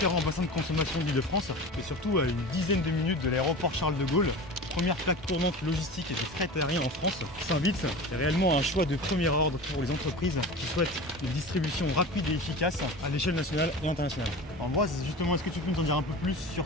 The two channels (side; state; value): both; normal; correlation 0.33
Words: bassins de consommation de l'Île-de-France et surtout à une dizaine de minutes de l'aéroport Charles de Gaulle. Première plaque tournante logistique et de fret aérien en France. Saint-Vitz est réellement un choix de premier ordre pour les entreprises qui souhaitent une distribution rapide et efficace à l'échelle nationale et internationale. Ambroise, justement, est-ce que tu peux nous en dire un peu plus sur